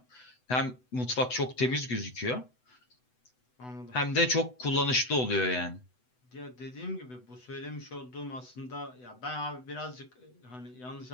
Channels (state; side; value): late; right; 8.0 ms